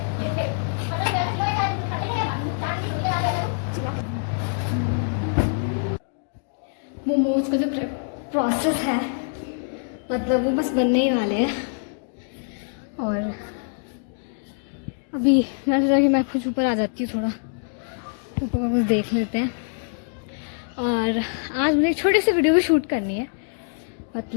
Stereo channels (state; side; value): silent; right; digital silence